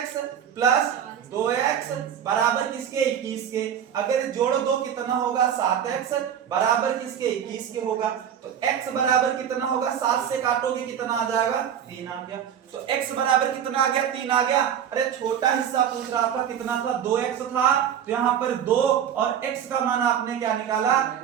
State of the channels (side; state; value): left; quieter; 9.0 dB